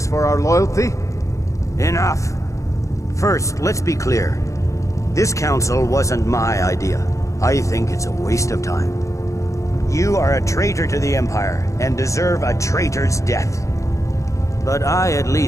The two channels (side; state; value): right; late; 0.15 ms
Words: for our loyalty? Enough. First, let's be clear. This council wasn't my idea. I think it's a waste of time. You are a traitor to the Empire, and deserve a traitor's death. But I at